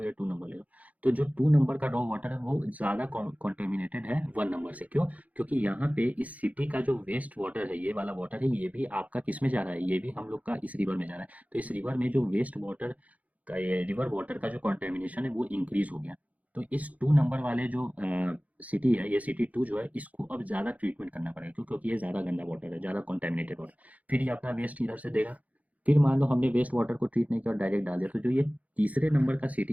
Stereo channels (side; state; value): left; late; 0.072 ms